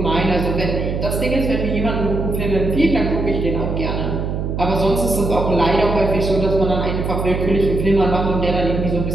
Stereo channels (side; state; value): right; noise; hum, 2 dB below the sound